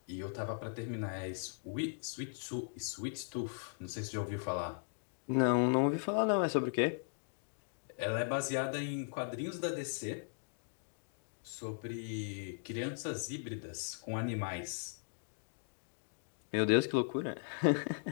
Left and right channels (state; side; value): silent; right; digital silence